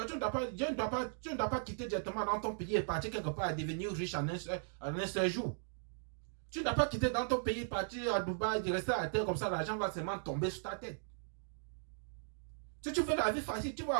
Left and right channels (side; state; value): left; silent; digital silence